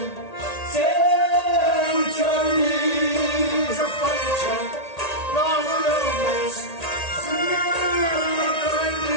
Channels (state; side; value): late; right; 1.8 ms